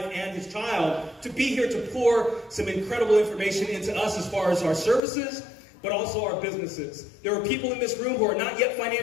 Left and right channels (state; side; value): drops out; right; at 5.0 s